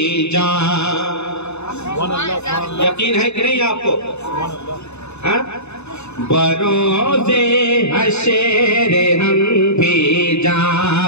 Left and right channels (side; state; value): right; late; 0.81 ms